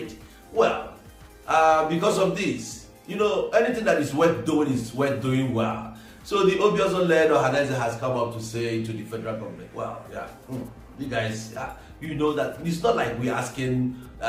Well, because of this, anything that is worth doing is worth doing well. So the Obiozo-led organizer has come up to say to the federal government, well, you guys, you know that it's not like we're asking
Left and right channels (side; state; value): both; identical; correlation 1.00